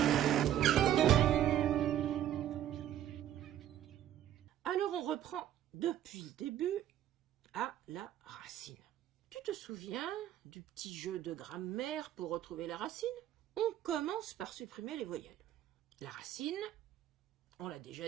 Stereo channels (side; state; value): left; quieter; 11.4 dB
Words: Alors on reprend depuis le début à la racine. Tu te souviens du petit jeu de grammaire pour retrouver la racine? On commence par supprimer les voyelles. La racine, on l'a